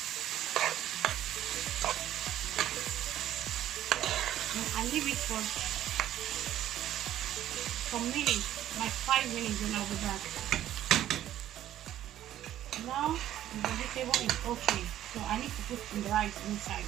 And I leave it for some minutes, like 5 minutes, and I'll be back. Now the vegetable is okay, so I need to put some rice inside.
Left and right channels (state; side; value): quieter; left; 12.4 dB